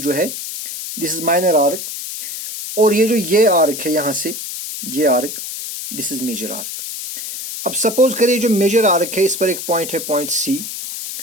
है दिस इज माइनर आर्क, और ये जो ये आर्क है यहां से ये arc, this is major arc. अब सपोज करिए जो मेजर आर्क है इस पर एक पॉइंट है पॉइंट सी,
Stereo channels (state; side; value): noise; left; hiss, 7 dB below the sound